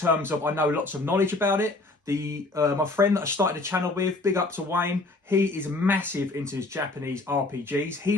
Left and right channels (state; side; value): quieter; right; 3.1 dB